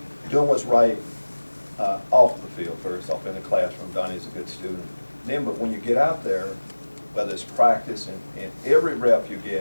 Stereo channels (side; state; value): both; inverted; correlation -1.00